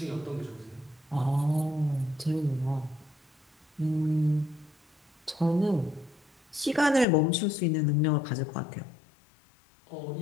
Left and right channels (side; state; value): right; drops out; at 7.1 s